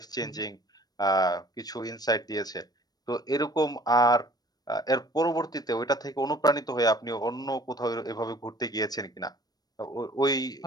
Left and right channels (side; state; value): right; late; 0.19 ms